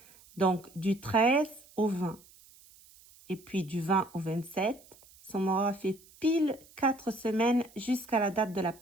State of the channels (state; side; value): noise; right; hiss, 25 dB below the sound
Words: Donc, du 13 au 20. Et puis, du 20 au 27. Ça m'aura fait pile 4 semaines jusqu'à la date de la